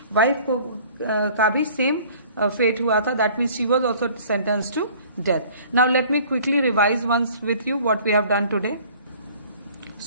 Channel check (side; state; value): both; inverted; correlation -0.51